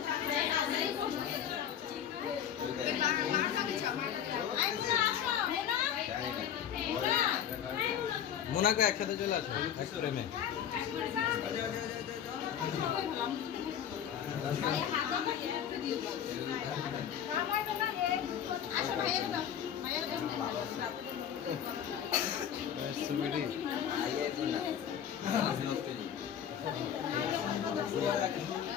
মোনাকে একসাথে চলে আসো এক প্রেমে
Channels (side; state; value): right; quieter; 9.2 dB